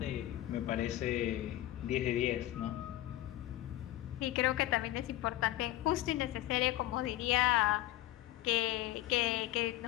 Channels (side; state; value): right; quieter; 15.2 dB